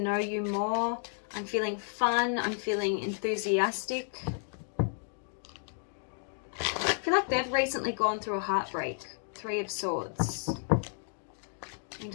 you more. I'm feeling fun. I'm feeling enthusiastic. I feel like they've recently gone through a heartbreak. Three of Swords.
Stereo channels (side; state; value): right; silent; 56 dB below the other